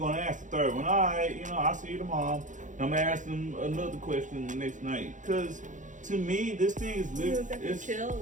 ask the third one. All right, you know, I'll see you tomorrow. I'm gonna ask them another question the next night. Cause to me, this thing is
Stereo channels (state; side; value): late; left; 0.37 ms